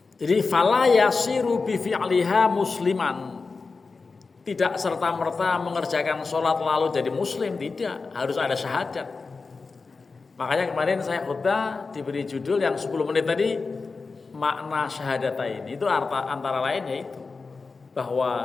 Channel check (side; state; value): right; quieter; 4.3 dB